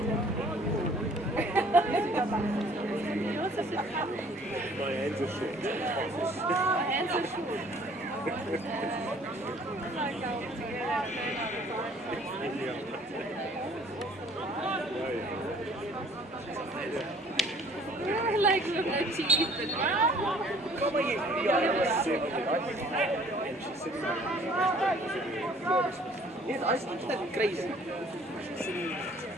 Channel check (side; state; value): both; normal; correlation 0.56